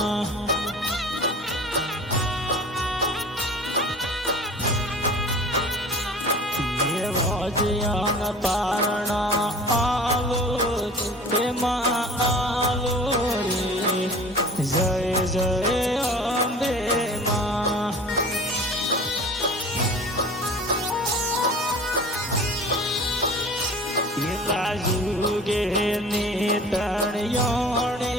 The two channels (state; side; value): normal; both; correlation 0.41